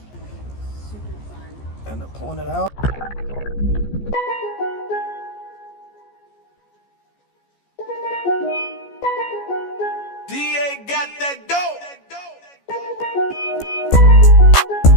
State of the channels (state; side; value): late; right; 14 ms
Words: Super fun. End up pulling it out. DA got that dope.